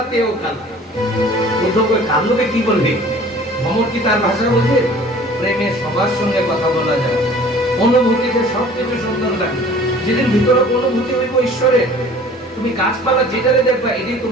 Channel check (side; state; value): both; normal; correlation 0.48